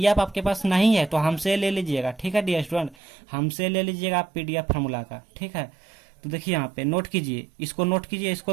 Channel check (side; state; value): left; drops out; at 3.0 s